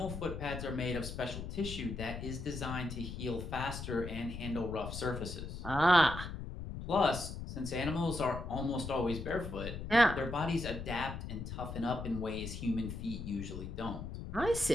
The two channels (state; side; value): noise; left; rumble, 7 dB below the sound